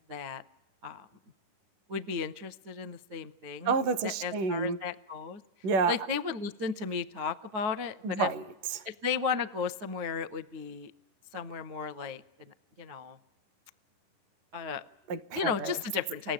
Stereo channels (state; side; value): late; left; 11 ms